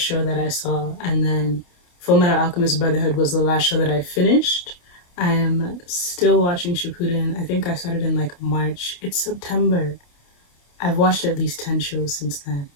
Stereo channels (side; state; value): right; late; 28 ms